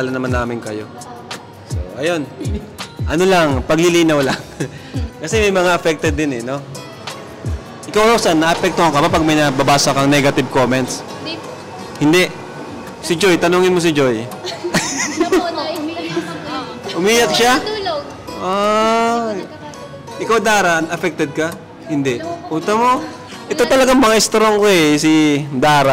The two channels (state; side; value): identical; both; correlation 1.00